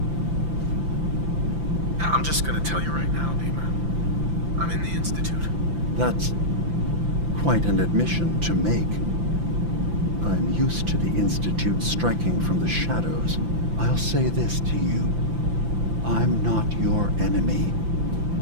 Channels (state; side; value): late; left; 5.9 ms